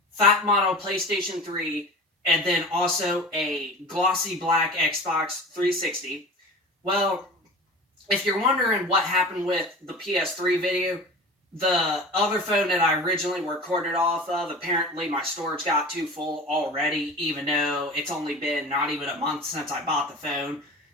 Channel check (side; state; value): both; normal; correlation 0.36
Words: fat model PlayStation 3 and then also a glossy black Xbox 360. Well, if you're wondering what happened with the PS3 video, the other phone that I originally recorded off of, apparently my storage got too full already, even though it's only been not even a month since I bought the phone,